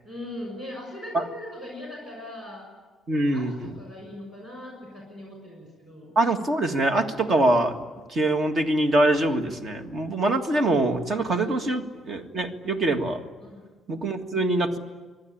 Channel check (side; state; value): both; normal; correlation 0.73